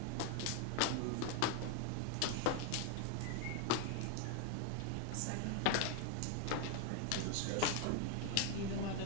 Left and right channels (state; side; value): different; both; correlation 0.01